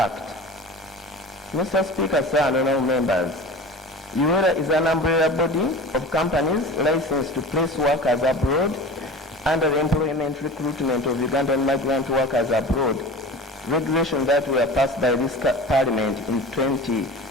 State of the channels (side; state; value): both; normal; correlation 0.36